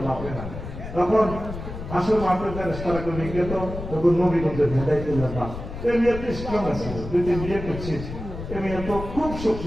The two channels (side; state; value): left; noise; rumble, 9 dB below the sound